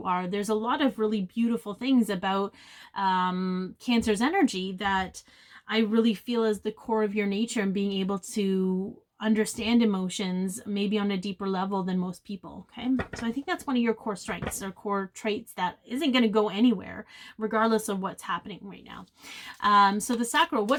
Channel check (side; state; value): both; identical; correlation 1.00